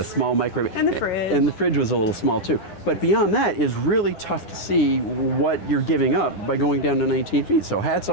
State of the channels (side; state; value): right; late; 10 ms